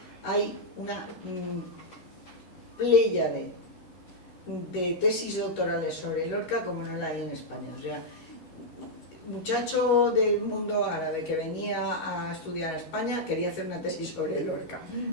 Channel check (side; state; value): right; late; 13 ms